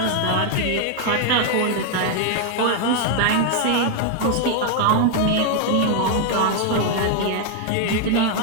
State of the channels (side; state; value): both; different; correlation 0.00